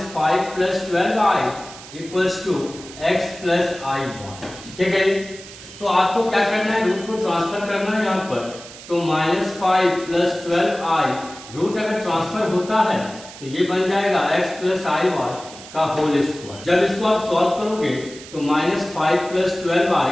5 plus 12i equals to x plus i y, ठीक है। तो आपको क्या करना है, रूट को ट्रांसफर करना है यहाँ पर, तो माइनस 5 प्लस 12i रूट अगर ट्रांसफर होता है तो ये बन जाएगा x प्लस आई वाई का होल स्क्वायर। जब इसको आप सॉल्व करोगे तो minus 5 plus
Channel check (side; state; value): right; noise; hiss, 16 dB below the sound